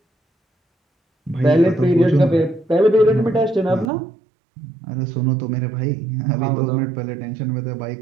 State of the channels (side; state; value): left; drops out; at 3.9 s